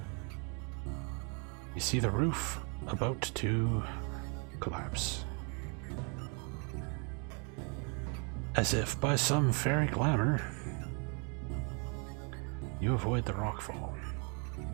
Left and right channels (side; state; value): left; quieter; 36.7 dB